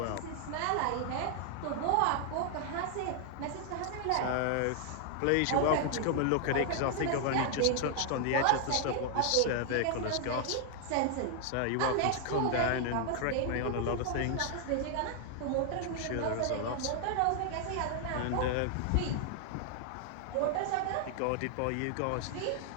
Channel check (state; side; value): different; both; correlation 0.00